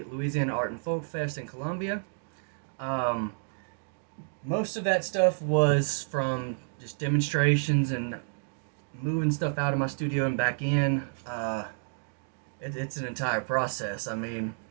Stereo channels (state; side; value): silent; left; digital silence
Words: Louisiana Art and Folk Fest in Columbia. Um, Most of that stuff was from just demonstrations and moving stuff out of my studio and back in. It's an entire process. I mean,